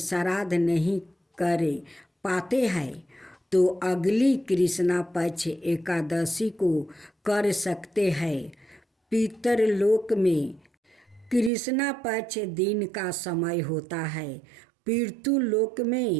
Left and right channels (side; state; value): left; drops out; at 11.5 s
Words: नहीं कर पाते हैं तो अगली कृष्णा पक्ष एकादशी को कर सकते हैं। पितरलोक में कृष्णा पक्ष दिन का समय होता है। पितृलोक